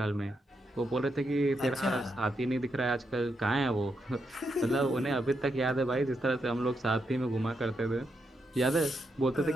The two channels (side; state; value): both; normal; correlation 0.82